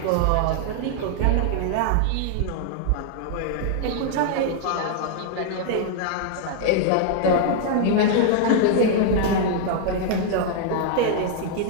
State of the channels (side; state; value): both; different; correlation -0.01